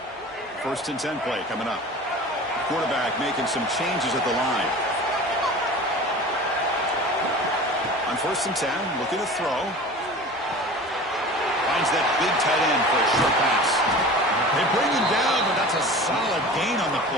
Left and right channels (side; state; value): both; normal; correlation 0.38